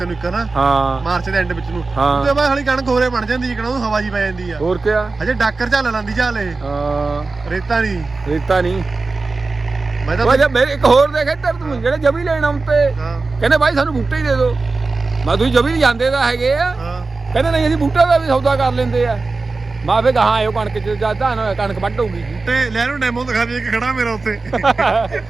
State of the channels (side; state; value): left; quieter; 3.8 dB